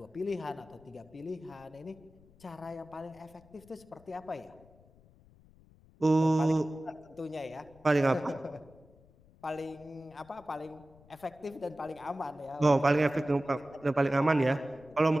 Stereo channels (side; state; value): left; noise; rumble, 26 dB below the sound